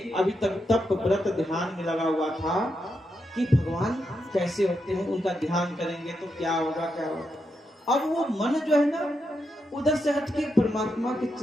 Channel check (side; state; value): both; normal; correlation 0.84